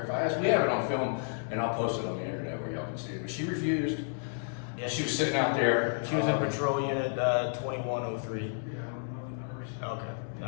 If I ask, we have it on film and I'll post it on the internet where y'all can see it. But she refused. Yeah, She was sitting out there. She was in patrol unit 2103. Yeah, I don't know the numbers. Okay.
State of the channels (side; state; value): right; silent; 57 dB below the other